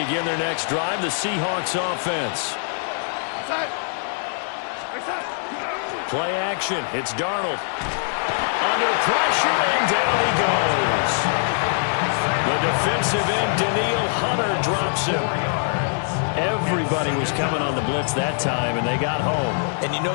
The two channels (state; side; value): silent; right; digital silence